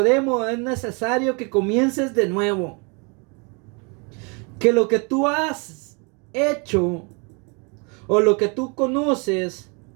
es necesario que comiences de nuevo. Que lo que tú has hecho o lo que tú conoces,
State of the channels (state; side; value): quieter; left; 33.0 dB